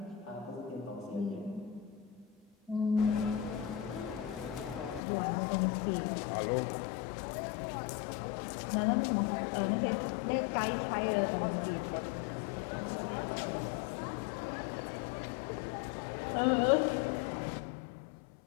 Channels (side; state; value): right; drops out; at 5.0 s